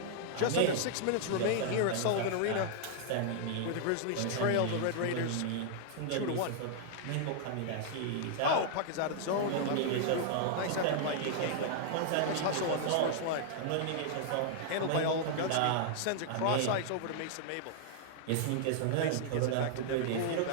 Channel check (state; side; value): different; both; correlation -0.01